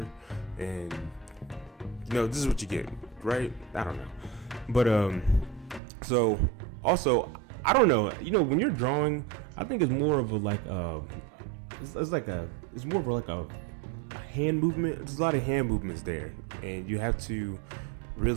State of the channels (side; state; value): left; drops out; at 5.8 s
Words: and this is what you get, right? I don't know, but so also I don't know, when you're drawing, I think it's more of it's more of a hand movement. There's a lot of hand movements there, and you have to